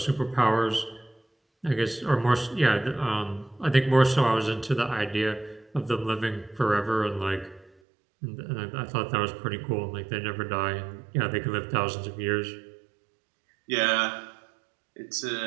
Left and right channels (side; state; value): left; drops out; at 7.7 s